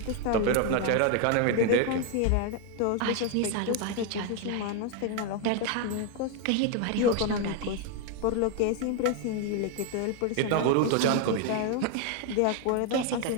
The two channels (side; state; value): both; different; correlation 0.01